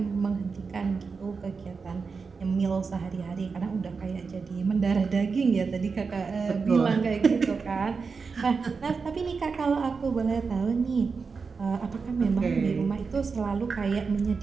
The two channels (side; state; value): left; quieter; 5.0 dB